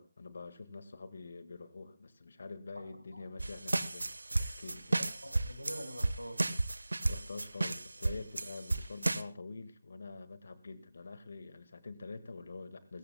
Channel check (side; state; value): both; inverted; correlation -0.97